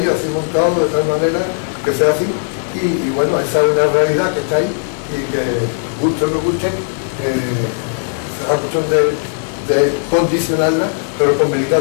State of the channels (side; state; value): right; silent; digital silence